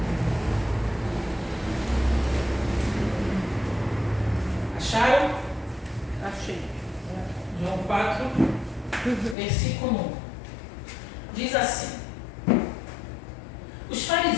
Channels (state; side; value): drops out; right; at 9.3 s